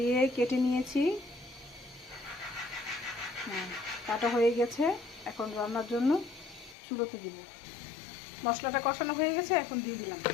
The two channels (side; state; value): right; drops out; at 6.8 s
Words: কেটে নিয়েছি, কাটা হয়ে গেছে। এখন রান্নার জন্য চুলোতে দিব। মশলাটা কষানো হয়ে গেছে, এখন দিয়ে দিলাম